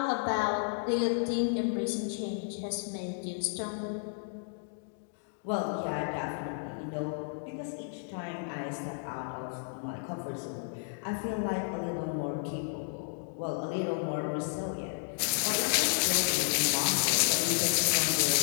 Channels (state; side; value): silent; right; digital silence